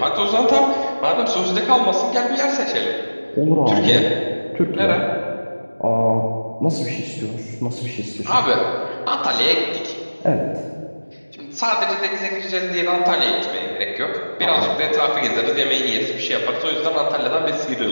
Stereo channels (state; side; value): inverted; both; correlation -1.00